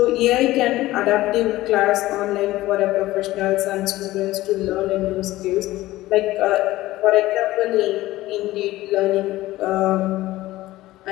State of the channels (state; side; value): quieter; right; 16.8 dB